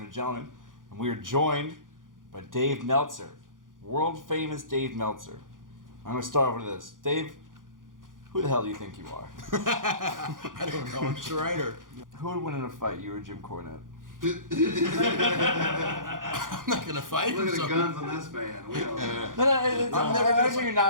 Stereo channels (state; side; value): late; left; 0.89 ms